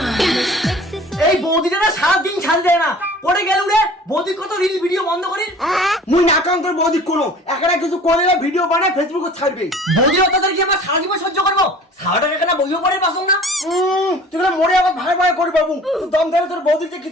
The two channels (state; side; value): normal; both; correlation 0.46